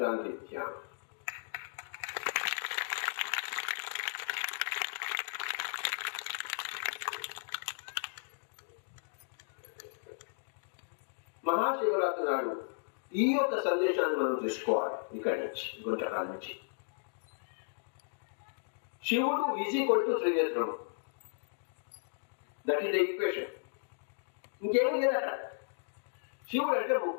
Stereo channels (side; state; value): right; silent; digital silence